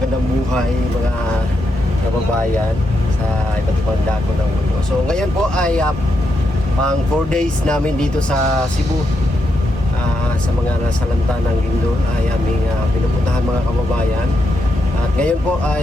buhay, mga kababayan sa iba't ibang dako ng mundo. So ngayon po ay pang 4 days namin dito sa Cebu. Sa mga nasalanta ng Lindol ay aming pinupuntahan mga kababayan. At ngayon po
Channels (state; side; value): normal; both; correlation 0.82